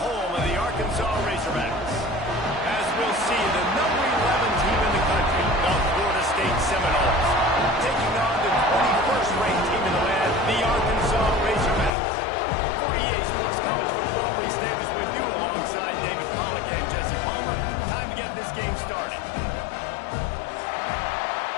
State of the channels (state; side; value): drops out; right; at 11.9 s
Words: of the Arkansas Razorbacks. As we'll see, the number 11 team in the country, the Florida State Seminoles, taking on the 21st ranked team in the land, the Arkansas Razorbacks. For EA Sports College Football, Reese Davis with you alongside David Pollack and Jesse Palmer. Time to get this game started.